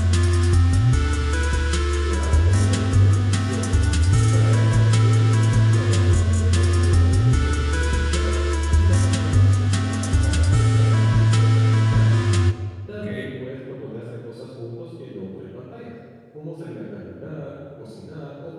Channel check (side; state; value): both; identical; correlation 1.00